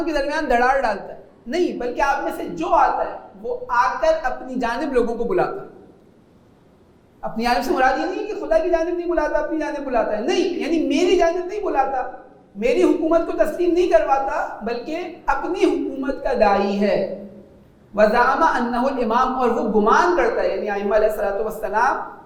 کے درمیان دراڑ ڈالتا ہے، نہیں بلکہ آپ میں سے جو آتا ہے وہ آ کر اپنی جانب لوگوں کو بلاتا ہے۔ اپنی جانب سے مراد یہ نہیں ہے کہ خدا کی جانب نہیں بلاتا، اپنی جانب بلاتا ہے، نہیں، یعنی میری جانب نہیں بلاتا، میری حکومت کو تسلیم نہیں کرواتا، بلکہ اپنی حکومت کا داعی ہے۔ وَزَعَمَ أَنَّهُ الْإِمَامُ، اور وہ گمان کرتا ہے، یعنی ائمہ علیہ السلام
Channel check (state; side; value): identical; both; correlation 1.00